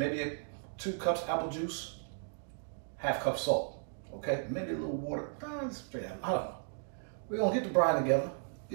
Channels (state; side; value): silent; left; digital silence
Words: 2 cups apple juice, ½ cup salt, okay? Maybe a little water, I don't know. We're gonna get the brine together,